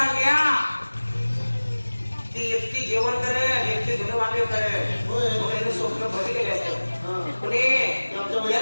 ती एकटी जेवण करेल, एकटी धुणं भांडे करेल, स्वप्न भरी गेले असतं. कुणी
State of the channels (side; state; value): both; inverted; correlation -1.00